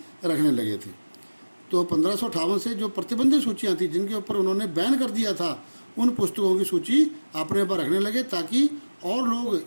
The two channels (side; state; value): both; inverted; correlation -1.00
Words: रखने लगे थे। तो 1558 से जो प्रतिबंधित सूचियां थी जिनके ऊपर उन्होंने बैन कर दिया था, उन पुस्तकों की सूची अपने पर रखने लगे ताकि और